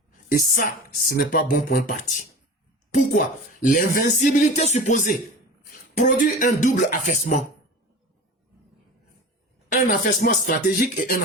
Et ça, ce n'est pas bon pour un parti. Pourquoi? L'invincibilité supposée produit un double affaissement. Un affaissement stratégique et un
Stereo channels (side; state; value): both; normal; correlation 0.34